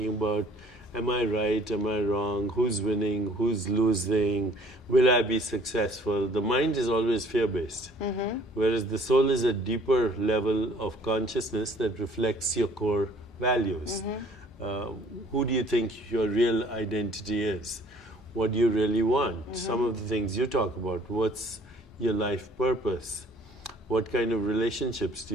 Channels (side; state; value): both; normal; correlation 0.55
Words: about, am I right, am I wrong, who's winning, who's losing, will I be successful? The mind is always fear-based, whereas the soul is a deeper level of consciousness that reflects your core values. Who do you think your real identity is? What do you really want? Some of the things you talk about. What's your life purpose? What kind of relationships do